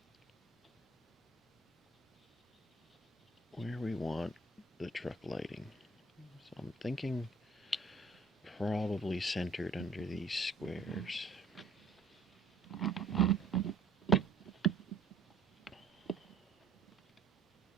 we want the truck lighting. So I'm thinking probably centered under these squares.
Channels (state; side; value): quieter; left; 3.7 dB